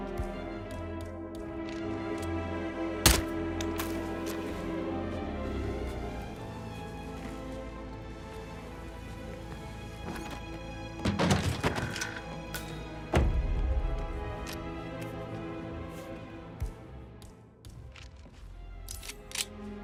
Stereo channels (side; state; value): both; identical; correlation 1.00